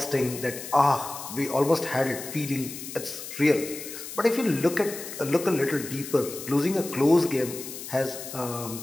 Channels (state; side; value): noise; left; hiss, 10 dB below the sound